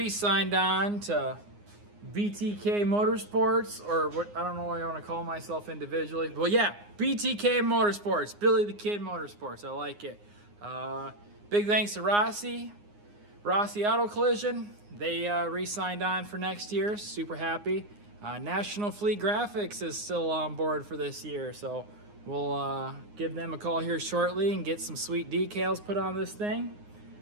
on to BTK Motorsports, or what, I don't know what I want to call myself individually. But yeah, BTK Motorsports, Billy the Kid Motorsports. I like it. Big thanks to Rossi Auto Collision. They re-signed on for next year. Super happy. National Fleet Graphics is still on board for this year, so we'll give them a call here shortly and get some sweet decals put on this thing.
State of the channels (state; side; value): late; left; 9.7 ms